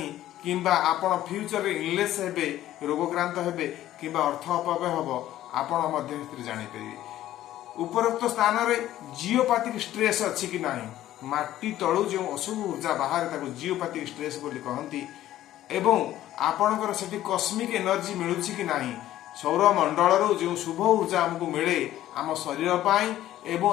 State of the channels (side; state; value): right; quieter; 13.5 dB